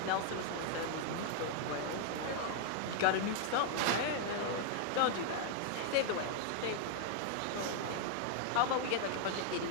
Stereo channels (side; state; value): both; different; correlation 0.00